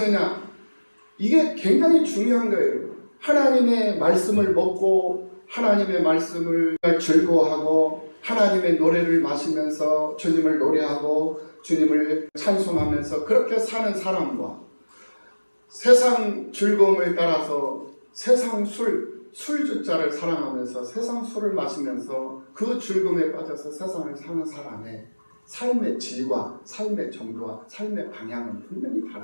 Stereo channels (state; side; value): inverted; both; correlation -1.00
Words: 이게 굉장히 중요한 거예요. 하나님의 말씀을 먹고 하나님의 말씀을 즐거워하고 하나님의 노래를 마시면서 주님을 노래하고 주님을 찬송하면서 그렇게 사는 사람과 세상 즐거움을 따라서 세상 술주자를 사랑하면서 세상 술을 마시면서 그 즐거움에 빠져서 세상을 사는 사람의 삶의 질과 삶의 정도와 삶의 방향은 분명히